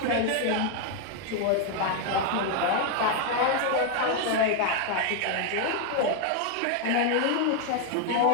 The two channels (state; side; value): different; both; correlation 0.01